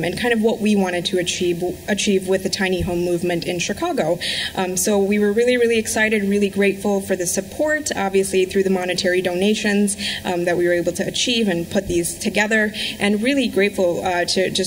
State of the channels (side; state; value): both; identical; correlation 1.00